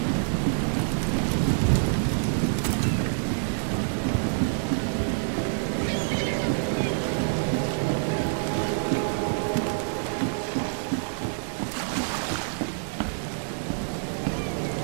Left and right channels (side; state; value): left; silent; digital silence